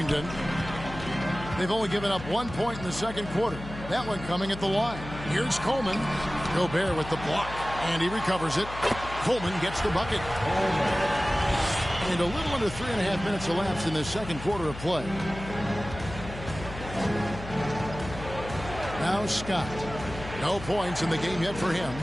They've only given up 1 point in the second quarter. That one coming at the line. Here's Coleman. Gobert with the block. And he recovers it. Coleman gets the bucket. And a little under 3.5 minutes elapsed in the second quarter of play. Now Scott. No points in the game yet for him.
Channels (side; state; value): left; noise; hum, 12 dB below the sound